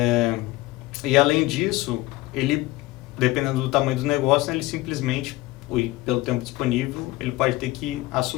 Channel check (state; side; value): quieter; right; 19.0 dB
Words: E além disso, ele, dependendo do tamanho do negócio, né, ele simplesmente, pelo tempo disponível, ele pode ter que